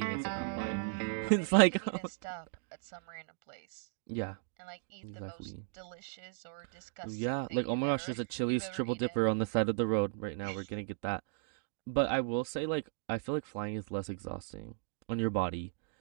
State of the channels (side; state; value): left; silent; digital silence